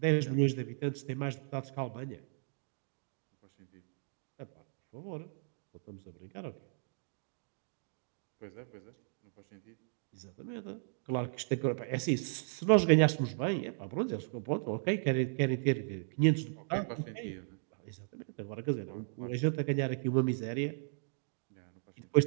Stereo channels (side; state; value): left; silent; digital silence